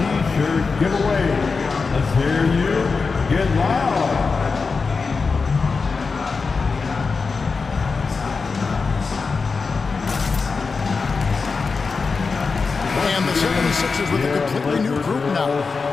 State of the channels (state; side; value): quieter; right; 4.6 dB